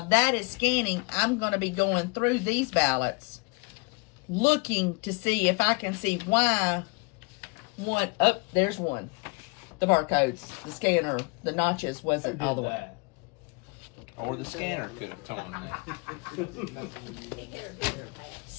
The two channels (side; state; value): right; quieter; 29.4 dB